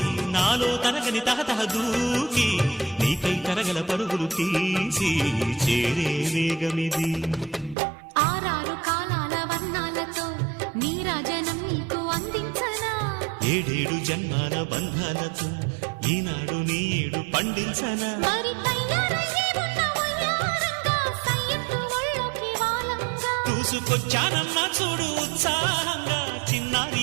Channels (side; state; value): left; drops out; at 7.8 s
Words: నాలో తరగని తహతహ దూకి నీకై తరగల పరుగులు తీసి చేరే వేగమిది. ఆరారు కాలాల వర్ణాలతో నీరాజనం నీకు అందించనా, ఏడేడు జన్మాల బంధాలతో ఈనాడు నీడు పండించనా. మరి తయారయ్యే ఉన్న వయ్యారంగా సయ్యత్తు ఒళ్ళోకి వాలంగా చూసుకొచ్చానన్నా చూడు ఉత్సాహంగా